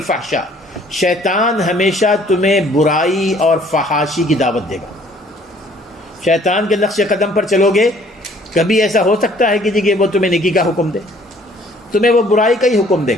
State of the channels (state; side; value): normal; both; correlation 0.58